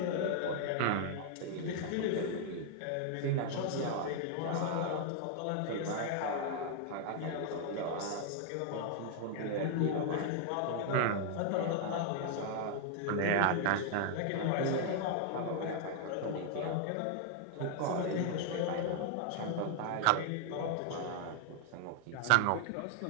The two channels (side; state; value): both; different; correlation 0.00